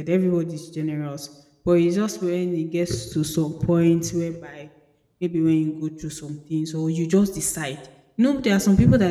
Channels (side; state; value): both; identical; correlation 1.00